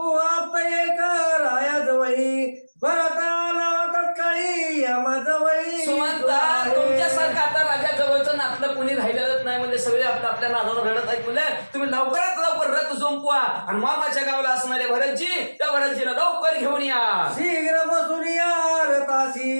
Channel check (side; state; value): both; inverted; correlation -1.00